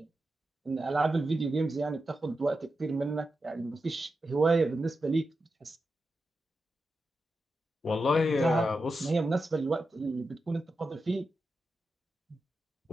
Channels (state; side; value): normal; both; correlation 0.89